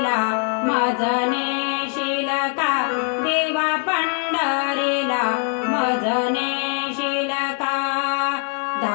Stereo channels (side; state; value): right; quieter; 38.4 dB